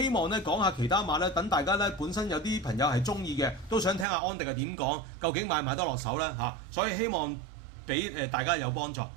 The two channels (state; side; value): drops out; left; at 4.0 s